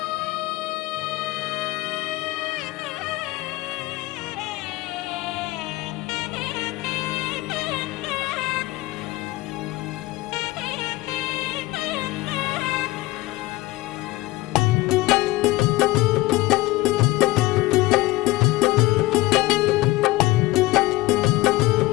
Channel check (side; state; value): right; quieter; 19.4 dB